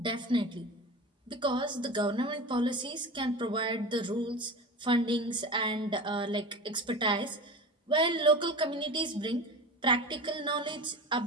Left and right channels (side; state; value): both; normal; correlation 0.31